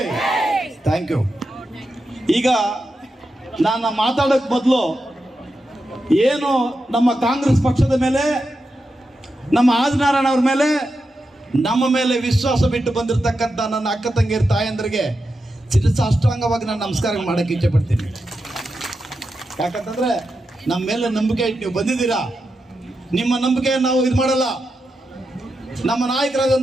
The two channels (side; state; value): both; normal; correlation 0.88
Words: Thank you. ಈಗ ನಾನು ಮಾತಾಡೋಕ್ ಮೊದಲು ಏನು ನಮ್ಮ ಕಾಂಗ್ರೆಸ್ ಪಕ್ಷದ ಮೇಲೆ, ನಮ್ಮ ಆದಿನಾರಾಯಣ ಅವ್ರ ಮೇಲೆ, ನಮ್ಮ ಮೇಲೆ ವಿಶ್ವಾಸ ಬಿಟ್ಟು ಬಂದಿರತಕ್ಕಂಥ ನನ್ನ ಅಕ್ಕ ತಂಗಿಯರ ತಾಯಂದ್ರಿಗೆ ಸಾಷ್ಟಾಂಗವಾಗಿ ನಾನು ನಮಸ್ಕಾರ ಮಾಡಕ್ಕೆ ಇಚ್ಛೆ ಪಡ್ತೀನಿ. ಯಾಕಂತಂದ್ರೆ ನಮ್ಮ ಮೇಲೆ ನಂಬಿಕೆ ಇಟ್ಟು ನೀವು ಬಂದಿದ್ದೀರಾ. ನಿಮ್ಮ ನಂಬಿಕೆ ನಾವು ಇದು ಮಾಡಲ್ಲ. ನಮ್ಮ